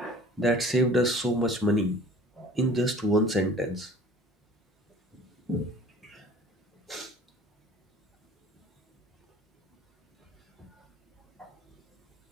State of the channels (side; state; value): both; normal; correlation 0.47